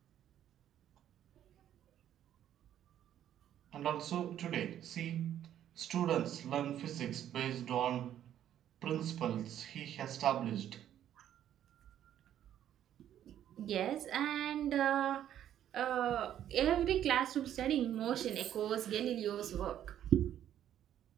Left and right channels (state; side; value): quieter; left; 10.9 dB